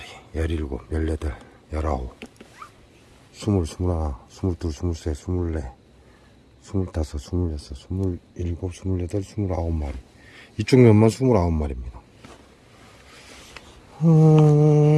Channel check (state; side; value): identical; both; correlation 1.00